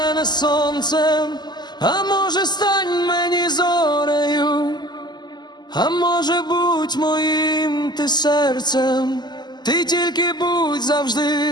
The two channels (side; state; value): right; late; 0.21 ms